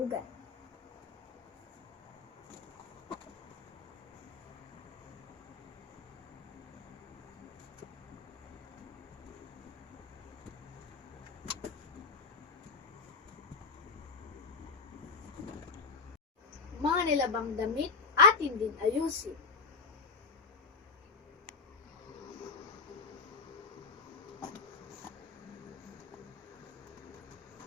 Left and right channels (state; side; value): quieter; right; 4.8 dB